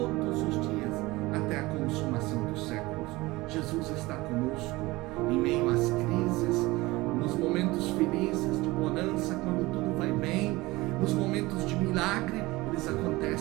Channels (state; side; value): quieter; left; 20.8 dB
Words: os dias, até a consumação dos séculos. Jesus está conosco em meio às crises, nos momentos felizes, de bonança, quando tudo vai bem, nos momentos de milagre, eles